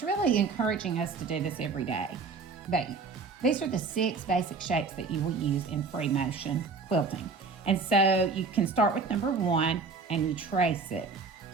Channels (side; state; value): left; quieter; 4.5 dB